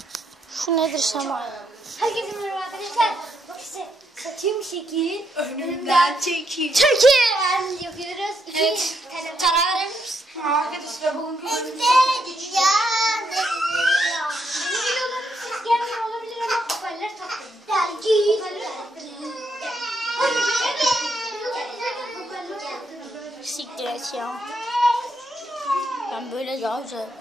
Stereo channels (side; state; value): both; normal; correlation 0.78